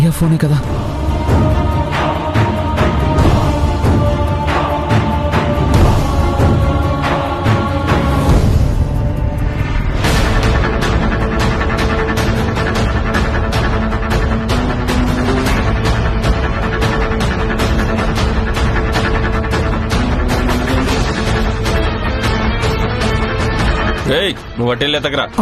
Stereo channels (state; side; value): identical; both; correlation 1.00